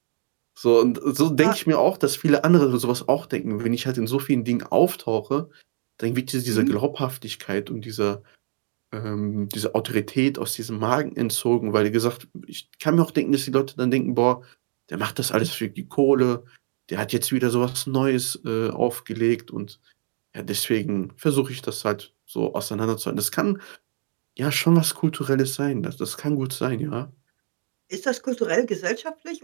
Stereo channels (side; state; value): left; silent; digital silence